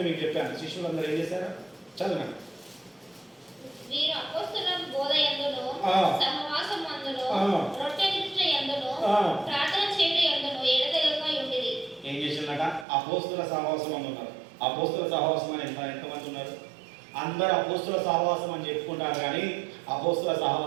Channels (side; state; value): left; drops out; at 12.9 s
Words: మీకు చెప్పాను, శిష్యులందరూ ఏం చేశారు? చదువు. వీరు అపోస్తలుల బోధ యందును సహవాసమందును రొట్టె విరుచుట యందును ప్రార్థన చేయుట యందును ఎడతెగక ఉండిరి. ఏం చేసిందట? అపోస్తల సహవాసం అని ఉన్నారు. అపోస్తల సహవాసం అని ఎంతమంది ఉన్నారు? అందరూ అపోస్తల సహవాసం అని చెప్పుకుంటారు, కానీ అపోస్తల